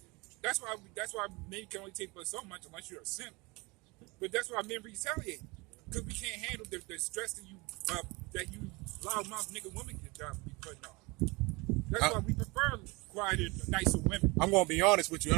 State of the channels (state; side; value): quieter; left; 25.6 dB